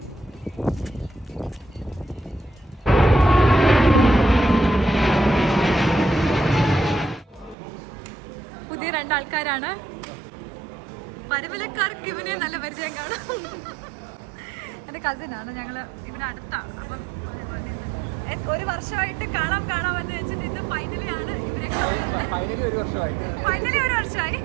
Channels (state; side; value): drops out; left; at 7.6 s